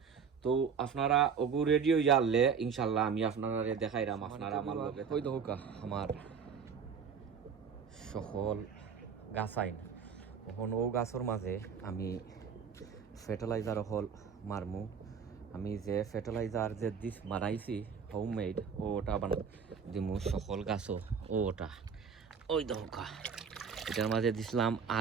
তো আপনারা ওগু রেডি হয়ে যালে ইনশাল্লাহ আমি আপনারা দেখাইলাম আপনারা আমার লগে হই দৌকা আমার সকল গাছ আইন এখন ও গাছের মাঝে আমি ফার্টিলাইজার হল মারমু আমি যে ফার্টিলাইজার যে দিস বানাইছি হোমমেড ওটা দিমু সকল গাছও ওটা ওই দৌকা এটার মাঝে দিছিলাম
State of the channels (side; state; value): left; quieter; 6.5 dB